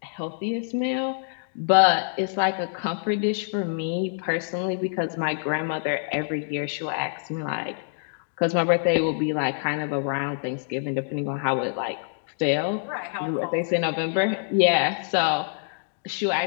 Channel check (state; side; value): silent; right; digital silence